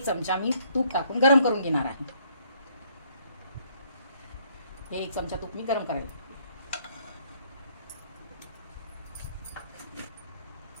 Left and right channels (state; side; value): inverted; both; correlation -0.65